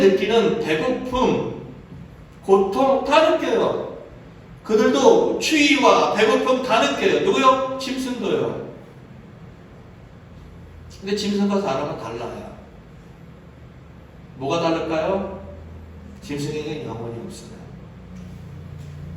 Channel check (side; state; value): both; identical; correlation 1.00